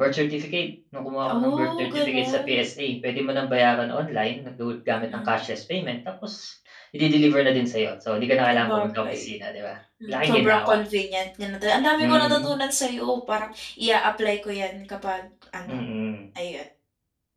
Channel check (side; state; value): both; identical; correlation 1.00